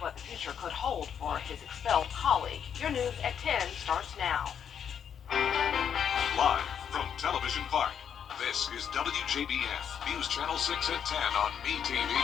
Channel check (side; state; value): right; quieter; 8.1 dB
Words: what the future could hold for his expelled colleague. Your news at 10 starts now. Live from Television Park, this is WJBF, News Channel 6 at 10 on MeTV.